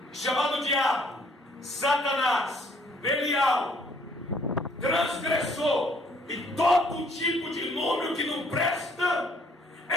chamado diabo, Satanás, Belial, transgressor e todo tipo de nome que não presta,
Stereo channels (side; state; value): both; normal; correlation 0.62